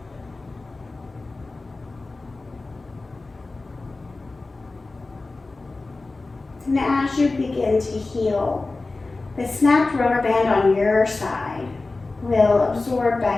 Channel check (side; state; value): right; quieter; 3.4 dB